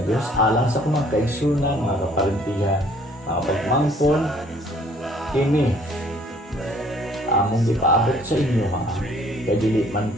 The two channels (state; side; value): normal; both; correlation 0.59